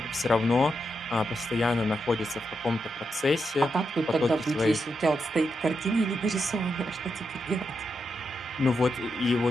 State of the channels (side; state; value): both; normal; correlation 0.84